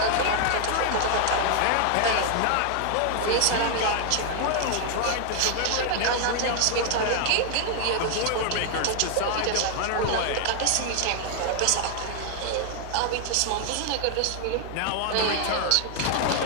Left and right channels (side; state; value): both; different; correlation 0.00